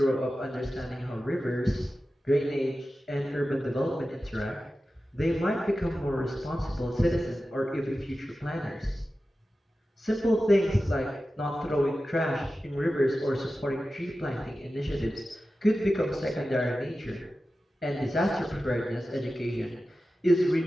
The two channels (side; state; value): both; normal; correlation 0.94